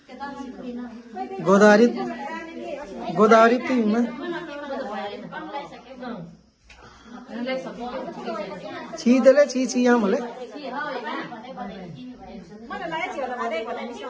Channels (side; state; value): both; identical; correlation 1.00